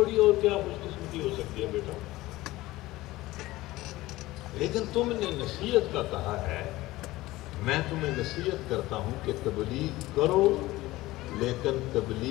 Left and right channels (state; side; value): quieter; right; 18.2 dB